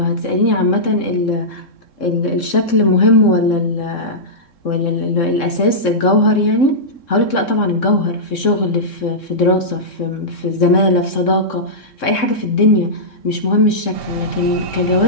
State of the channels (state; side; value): late; right; 3.7 ms